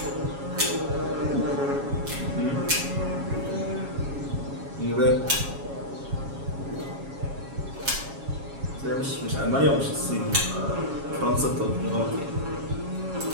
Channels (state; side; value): late; left; 7.3 ms